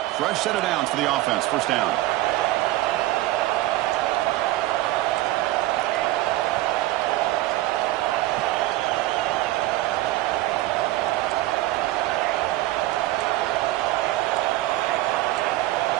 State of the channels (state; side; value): quieter; left; 16.9 dB